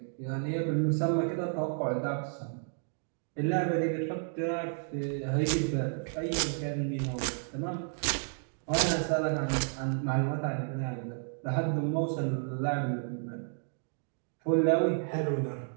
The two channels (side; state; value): left; silent; 57 dB below the other